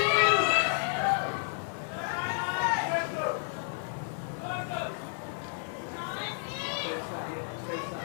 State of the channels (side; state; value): right; silent; 57 dB below the other